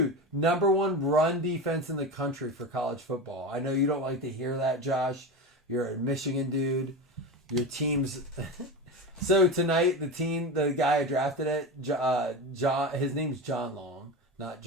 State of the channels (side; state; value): both; normal; correlation 0.24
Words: #1 run defense in the country for college football. I know you don't like to hear that, Josh. You're a Michigan dude. Your team's... So tonight, the guy I drafted it, his name's John Long, not